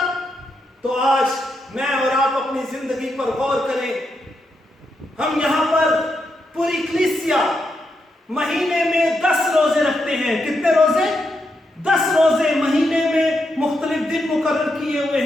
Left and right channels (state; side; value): normal; both; correlation 0.83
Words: تو آج میں اور آپ اپنی زندگی پر غور کریں۔ ہم یہاں پر پوری کلیسیا مہینے میں 10 روزے رکھتے ہیں۔ کتنے روزے؟ 10 روزے مہینے میں مختلف دن مقرر کیے ہوئے